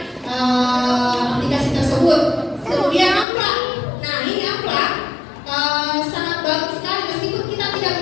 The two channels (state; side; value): drops out; right; at 3.2 s